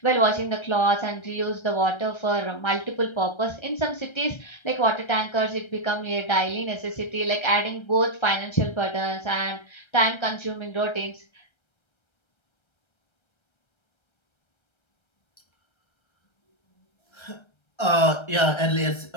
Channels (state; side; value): late; right; 1.3 ms